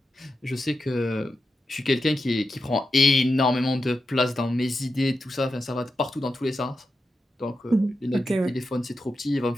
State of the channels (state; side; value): normal; both; correlation 0.88